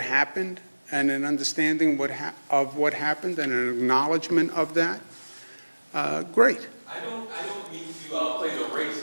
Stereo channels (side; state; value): both; inverted; correlation -1.00